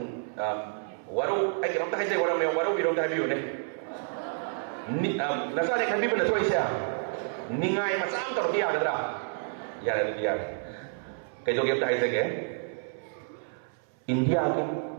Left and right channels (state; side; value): silent; left; 58 dB below the other